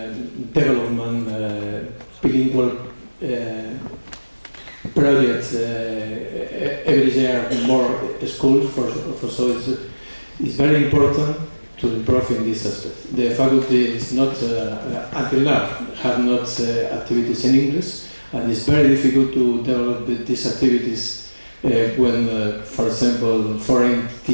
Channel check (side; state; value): both; inverted; correlation -1.00